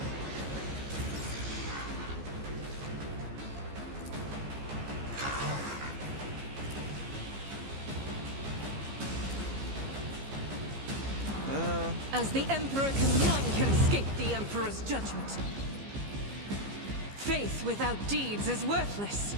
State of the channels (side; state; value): left; late; 15 ms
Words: As the Emperor none can escape the Emperor's judgment. Faith without deeds is worthless.